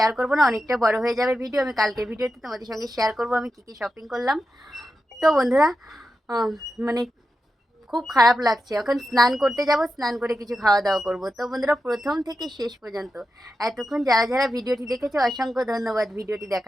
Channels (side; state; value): both; normal; correlation 0.90